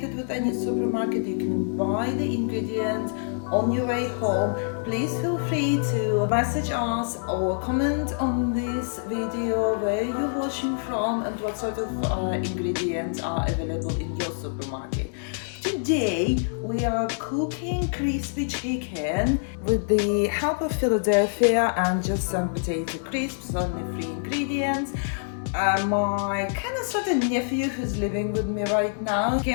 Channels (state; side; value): silent; right; digital silence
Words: with any supermarket. You can buy the ingredients on your way home. Please feel free to message us or comment on this video where you're watching from and what sort of ingredients are available in your supermarket. Today we are cooking crispy chicken with the help of Philadelphia and just some potato crisps, only 3 ingredients. My kind of sort of nephew who's living with me right now